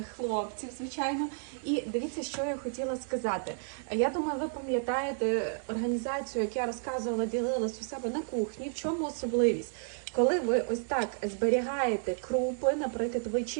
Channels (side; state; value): left; silent; 57 dB below the other